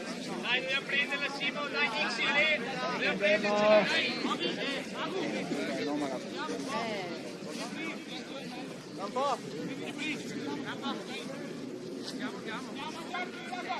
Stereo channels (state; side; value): identical; both; correlation 1.00